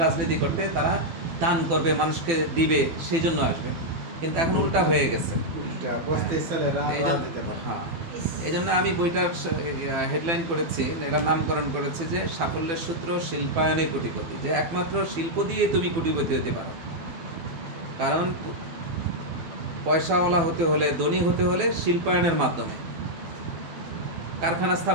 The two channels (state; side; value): late; left; 12 ms